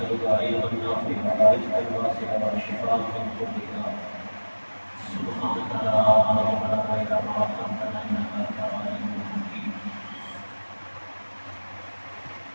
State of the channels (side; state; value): both; inverted; correlation -1.00